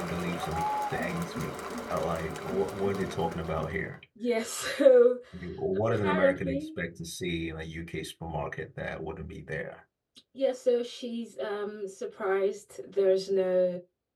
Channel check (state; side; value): identical; both; correlation 1.00